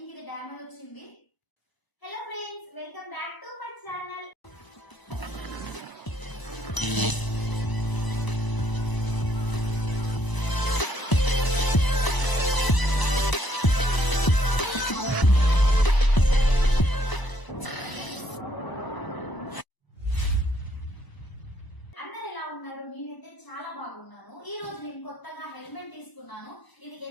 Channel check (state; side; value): late; right; 1.0 ms